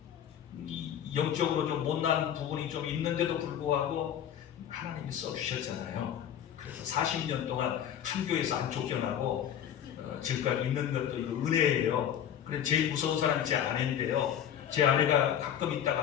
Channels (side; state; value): right; quieter; 9.6 dB